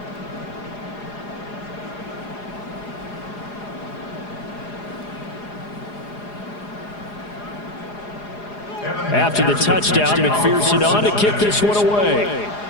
After the touchdown, McPherson on to kick this one away.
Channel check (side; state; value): right; late; 4.8 ms